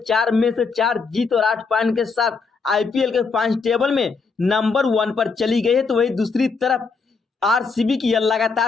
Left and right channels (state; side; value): quieter; right; 4.7 dB